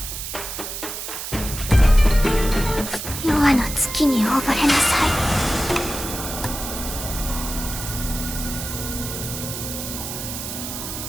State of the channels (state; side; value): noise; right; hiss, 7 dB below the sound